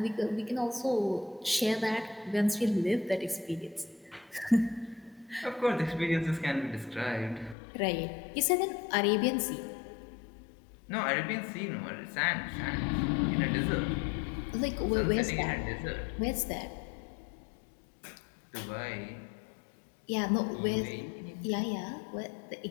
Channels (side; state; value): right; drops out; at 7.6 s